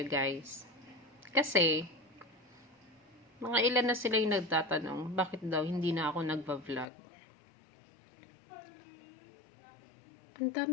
guys. Kasi, mga ilan na sila yung nagtatanong, bakit daw hindi na ako nagva-vlog? Ang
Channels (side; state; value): right; drops out; at 6.9 s